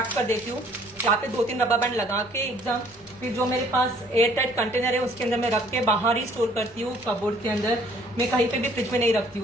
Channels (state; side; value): noise; right; rumble, 29 dB below the sound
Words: कर देती हूँ, यहाँ पे 2-3 रबर बैंड लगा के एकदम। फिर जो मेरे पास एयर टाइट कंटेनर है उसके अंदर मैं रख के बाहर ही स्टोर करती हूँ, कपबोर्ड के अंदर, मैं कहीं पे भी फ्रिज में नहीं रखती